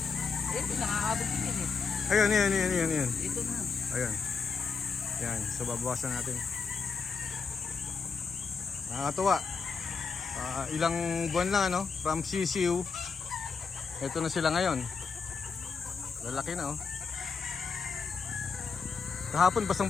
Ito, nakakabot din eh. Ayan. Ito na. Ayan. Yan. So, babawasan natin. Nakakatuwa. Ilang buwan lang, ano? From sisiu. Ito na sila ngayon. Lalaki na, oh. Kahapon,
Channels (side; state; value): right; quieter; 5.4 dB